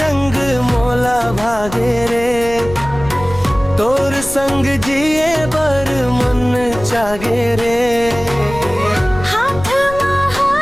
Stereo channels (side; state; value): left; noise; rumble, 13 dB below the sound